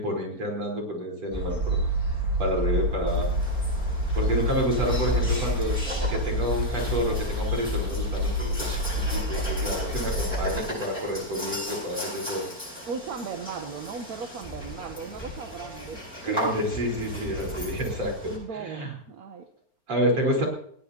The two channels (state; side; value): late; left; 4.4 ms